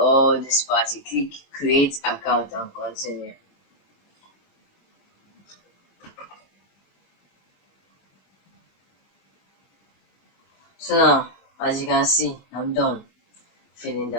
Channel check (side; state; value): right; late; 21 ms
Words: this part, you click create account and continue. So now, as you can see, I'm done filling